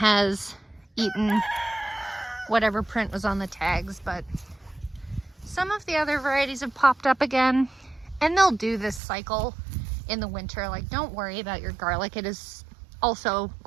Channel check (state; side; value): drops out; left; at 9.0 s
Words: eaten whatever print was on the tags, but some of the other varieties have popped up again, and they'll do this cycle in the winter. Like, don't worry about your garlic. It is also